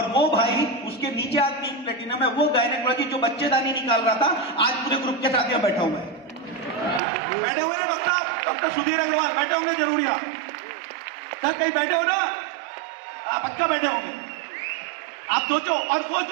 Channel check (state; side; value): drops out; left; at 7.0 s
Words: वो भाई, उसके नीचे आज 3 प्लेटिनम है, वो गायनेकोलॉजी जो बच्चेदानी निकाल रहा था, आज पूरे ग्रुप के साथ यहाँ बैठा हुआ है। बैठे हुए ना डॉक्टर सुधीर अग्रवाल बैठे होंगे जरूर यहाँ। सर कहीं बैठे हो ना? पक्का बैठे होंगे। आप सोचो। और वो